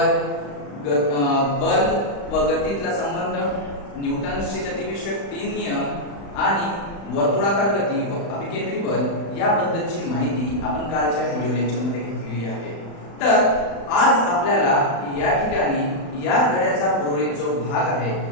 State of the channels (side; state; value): right; late; 35 ms